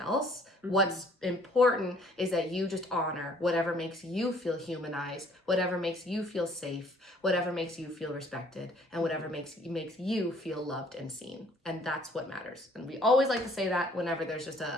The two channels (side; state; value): both; normal; correlation 0.59